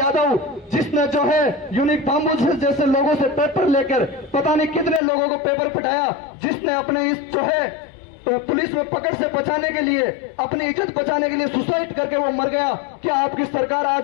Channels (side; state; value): right; drops out; at 5.0 s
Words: जिसने जो है यूनिक धाम्बू जैसे लोगों से पेपर लेकर पता नहीं कितने लोगों को पेपर पटाया, जिसने अपने इस जो है पुलिस में पकड़ से बचाने के लिए, अपनी इज्जत बचाने के लिए सुसाइड करके वो मर गया। क्या आपकी सरकार